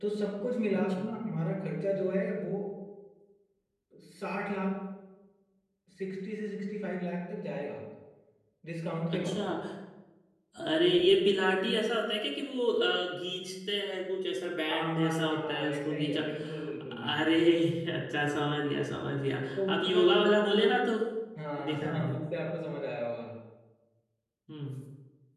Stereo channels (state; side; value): identical; both; correlation 1.00